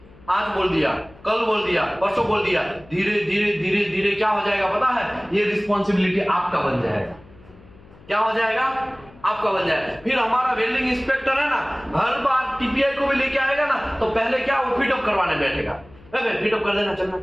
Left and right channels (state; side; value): noise; left; hum, 24 dB below the sound